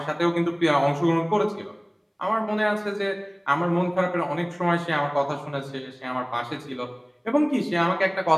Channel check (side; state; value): both; identical; correlation 1.00